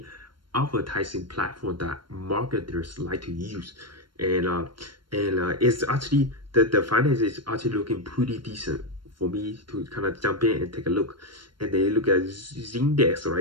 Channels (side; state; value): left; late; 0.72 ms